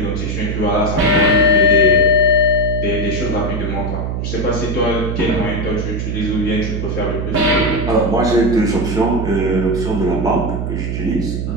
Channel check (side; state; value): right; noise; hum, 3 dB below the sound